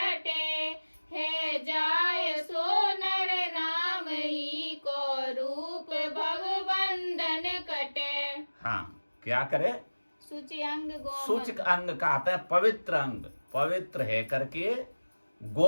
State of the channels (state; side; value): inverted; both; correlation -1.00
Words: है जाय सो नर नाम ही को रूप भगवंदन कटे। हाँ, क्या करे? सुचियांग गोमन। सूचक अंग कहते हैं पवित्र अंग, पवित्र है करके